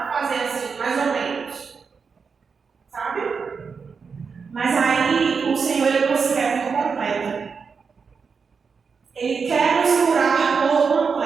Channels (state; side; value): quieter; left; 5.5 dB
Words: fazer assim, mais ou menos. Sabe? Mas aí o Senhor ele nos quer por completo. Ele quer nos curar por